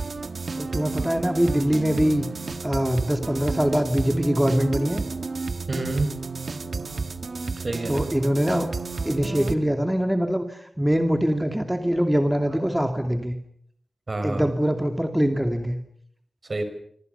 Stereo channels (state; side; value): normal; both; correlation 0.98